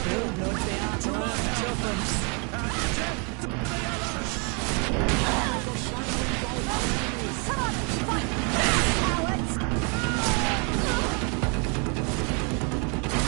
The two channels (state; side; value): quieter; left; 35.4 dB